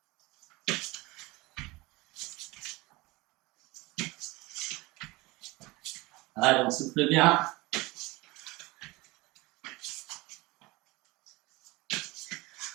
Allez, on souffle bien.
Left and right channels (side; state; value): left; quieter; 22.5 dB